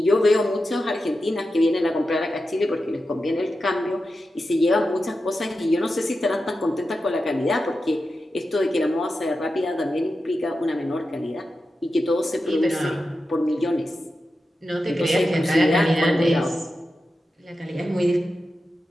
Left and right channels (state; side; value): normal; both; correlation 0.91